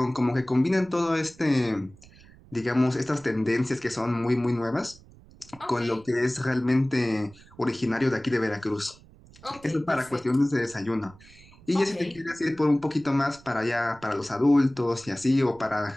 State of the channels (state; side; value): noise; right; rumble, 24 dB below the sound